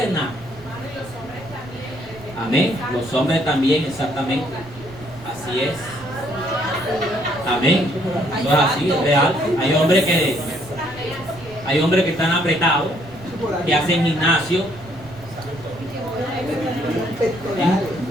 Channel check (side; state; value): right; noise; rumble, 20 dB below the sound